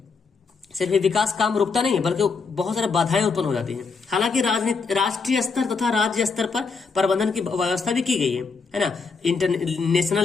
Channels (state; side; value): quieter; right; 4.8 dB